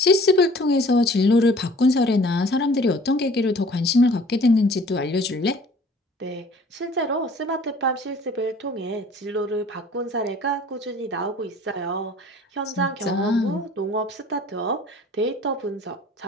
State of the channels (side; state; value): both; normal; correlation 0.51